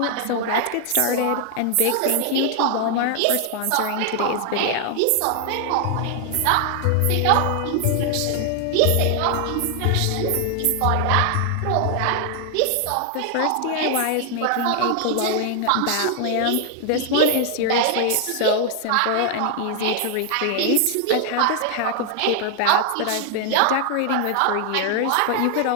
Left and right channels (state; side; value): different; both; correlation 0.00